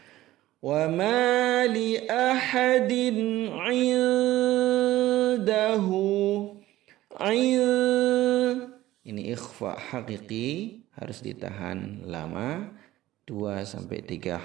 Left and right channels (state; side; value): quieter; left; 15.7 dB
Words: Wa ma li ahadin 'indahu Ini ikhfa hakiki, harus ditahan lama 2-3